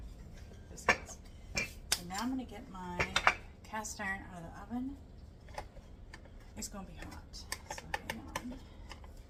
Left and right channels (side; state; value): both; identical; correlation 1.00